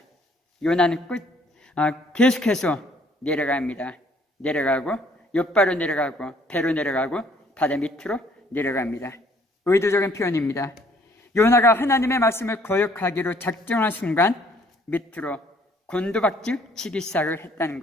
요나는 계속해서 내려갑니다. 내려가고 욥바로 내려가고 배로 내려가고 바다 밑으로 내려갑니다. 의도적인 표현입니다. 요나가 하나님의 말씀을 거역하기로 작정한 순간 밑으로 곤두박질 치기 시작을 했다는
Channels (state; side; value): normal; both; correlation 0.61